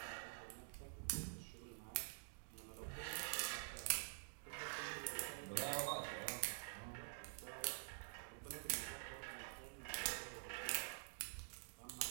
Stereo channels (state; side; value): silent; left; digital silence